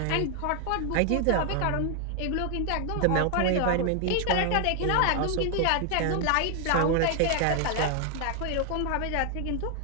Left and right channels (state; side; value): different; both; correlation 0.00